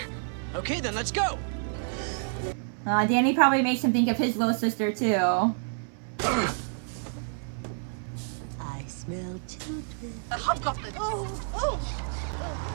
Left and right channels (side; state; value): left; silent; 59 dB below the other